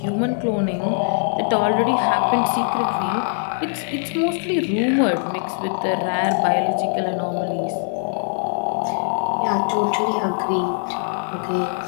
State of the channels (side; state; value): right; silent; 64 dB below the other